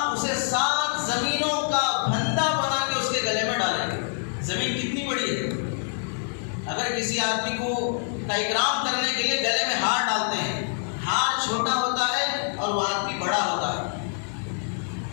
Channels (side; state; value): right; silent; 61 dB below the other